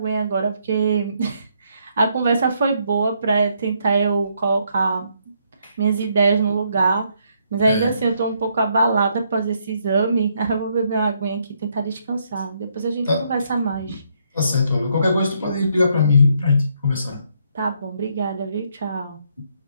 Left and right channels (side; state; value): both; inverted; correlation -0.73